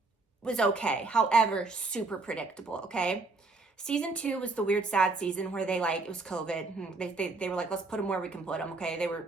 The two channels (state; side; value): quieter; left; 3.6 dB